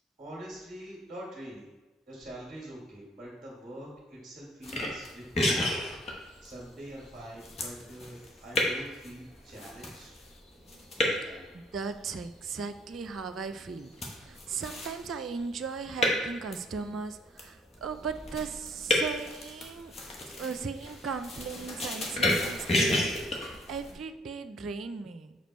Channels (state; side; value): normal; both; correlation 0.61